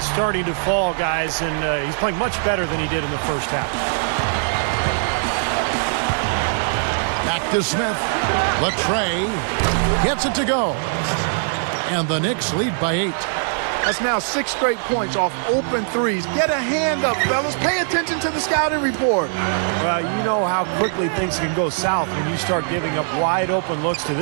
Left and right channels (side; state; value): left; silent; digital silence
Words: starting to fall, guys, and he's playing much better than he did in the first half. Back to Smith. Latrey gets it to go. And the Knicks lead by 8. That's now 6 straight points off open threes. Get a hand up, fellas. Pay attention to the scouting report. Well, you know how quickly things can go south when you start giving up wide open looks to